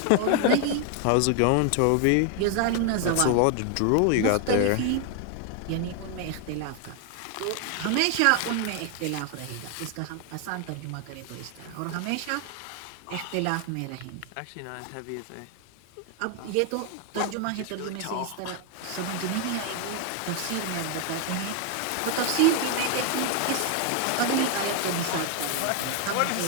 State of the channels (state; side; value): different; both; correlation 0.00